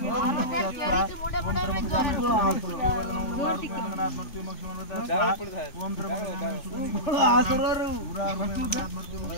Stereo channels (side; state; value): right; late; 3.5 ms